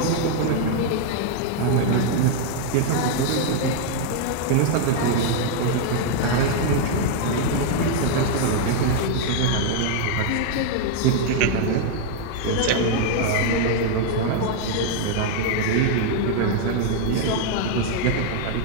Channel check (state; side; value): different; both; correlation 0.00